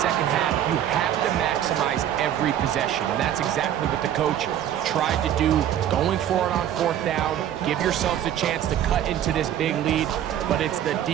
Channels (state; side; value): quieter; left; 10.8 dB